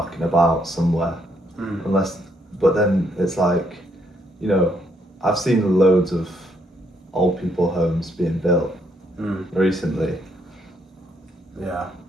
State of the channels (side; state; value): both; normal; correlation 0.72